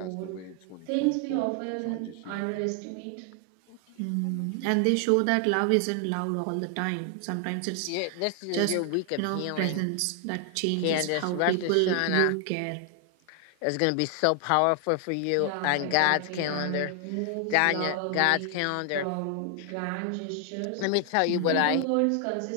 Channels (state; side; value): different; both; correlation 0.00